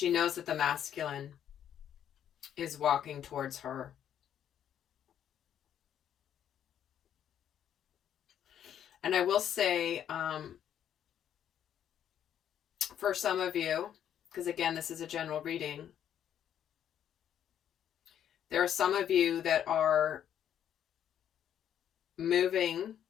knows that the masculine is walking towards her. And I will say, for some of you, because again, this is a general reading, there are some of you that are moving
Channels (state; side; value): quieter; right; 9.8 dB